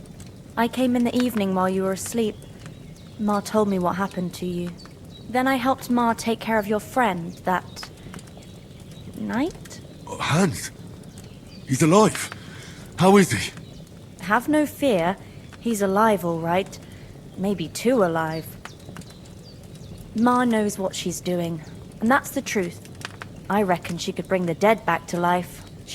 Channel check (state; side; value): identical; both; correlation 1.00